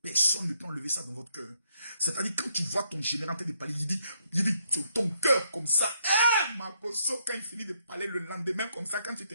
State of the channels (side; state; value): both; inverted; correlation -0.74